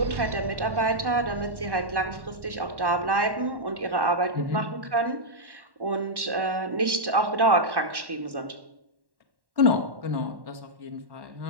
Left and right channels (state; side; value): late; left; 1.1 ms